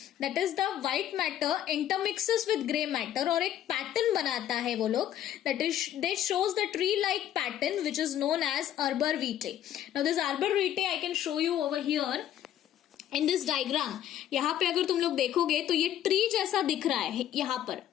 That is the white matter intermixes with grey matter और एक pattern बनाता है वो लोग. That is, they shows the tree-like pattern which is known as Arbor Vitae. Now this Arbor Vitae I can show you over here in this diagram. यहाँ पे अगर तुम लोग देखोगे तो ये tree जैसा दिख रहा है यहाँ पर.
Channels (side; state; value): right; quieter; 11.2 dB